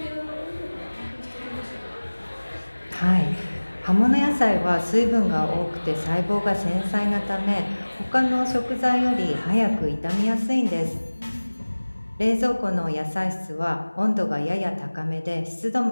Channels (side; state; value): both; inverted; correlation -1.00